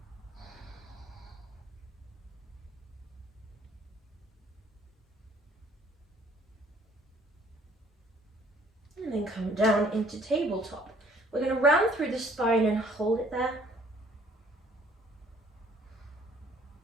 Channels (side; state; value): both; normal; correlation 0.59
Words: And then come down into tabletop. We're going to round through the spine and hold it there.